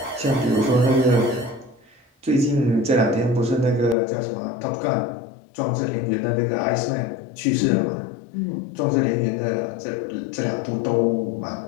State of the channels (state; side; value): drops out; right; at 4.0 s